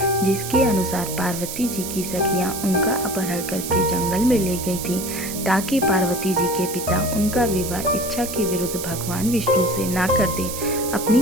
जिसके अनुसार पार्वती जी की सखियां उनका अपहरण करके जंगल में ले गई थी ताकि पार्वती जी के पिता उनका विवाह इच्छा के विरुद्ध भगवान विष्णु से ना कर दे।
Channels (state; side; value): noise; right; hiss, 7 dB below the sound